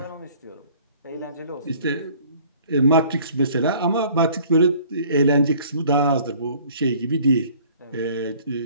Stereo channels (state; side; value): inverted; both; correlation -0.53